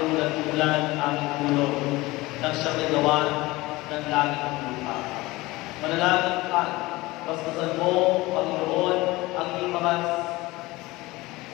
ang ulan-ulan ng aming tulong nang siyang nagawa ng langit at lupa. Manalangin ka, basbasan mo, Panginoon, ang iyong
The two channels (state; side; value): quieter; right; 20.5 dB